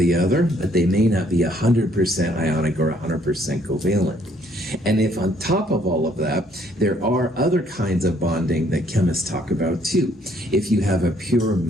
other, but they may not be 100% ionic or 100% covalent. And if on top of all of that, there are other kinds of bonding that chemists talk about too. If you have a pure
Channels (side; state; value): both; normal; correlation 0.65